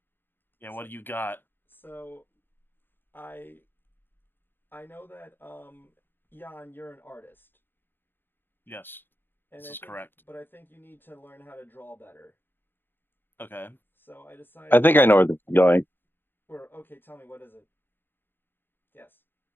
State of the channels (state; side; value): late; right; 0.099 ms